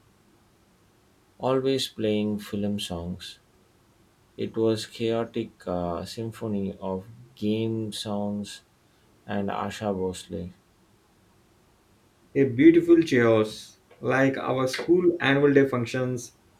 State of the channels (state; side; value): identical; both; correlation 1.00